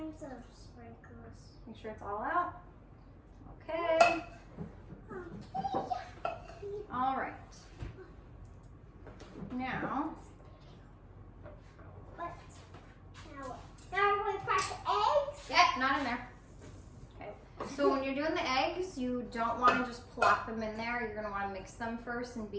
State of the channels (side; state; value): both; identical; correlation 1.00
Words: of sprinkles. Make sure it's all out. Okay. All right. Now. What? Now we're going to crack the eggs? Yeah, not in there. Okay. So when you're doing the eggs, you don't want to just plop them in there. You're going to want to mix them first and